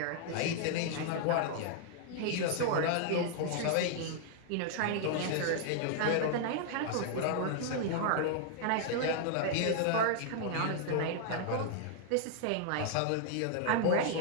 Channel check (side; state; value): both; different; correlation 0.00